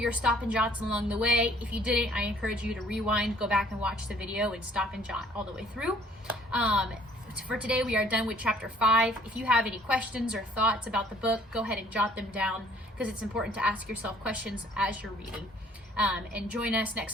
stop and jots along the way. If you didn't, I encourage you to rewind, go back and watch the video and stop and jot all the way through. For today, we are done with chapter 5. If you have any questions or thoughts about the book, go ahead and jot them down, because it's important to ask yourself questions as you're reading. And join us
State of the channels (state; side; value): normal; both; correlation 0.58